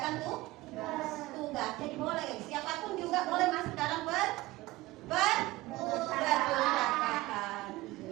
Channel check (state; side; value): quieter; left; 19.2 dB